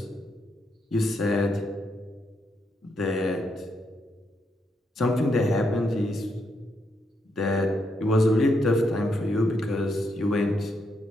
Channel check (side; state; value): both; normal; correlation 0.79